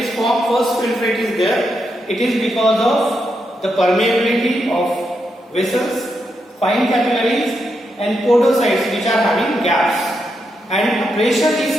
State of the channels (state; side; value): normal; both; correlation 0.83